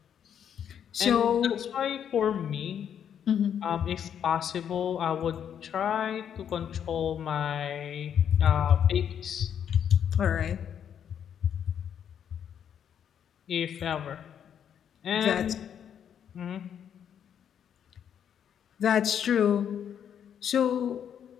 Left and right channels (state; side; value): quieter; right; 8.8 dB